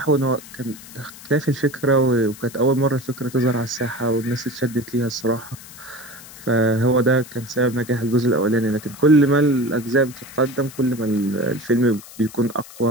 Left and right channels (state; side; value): noise; left; hiss, 18 dB below the sound